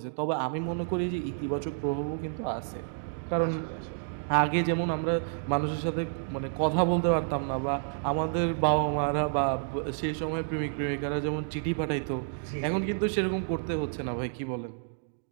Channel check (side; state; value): left; silent; digital silence